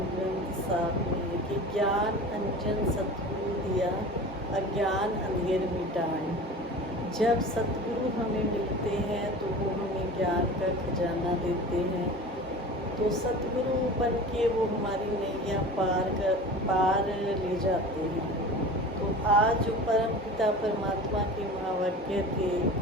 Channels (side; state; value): both; normal; correlation 0.36